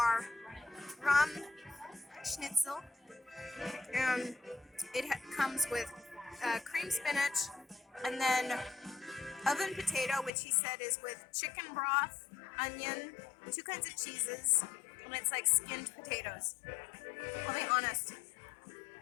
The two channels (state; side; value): drops out; right; at 10.3 s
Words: rum schnitzel, and it comes with cream spinach and then oven potato, which he said is with chicken broth, onion, 2 kinds of cheeses, and it's like skinned potatoes. I'll be honest,